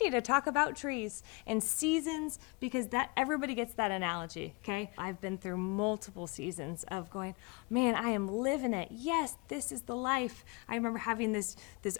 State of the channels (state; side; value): quieter; right; 28.8 dB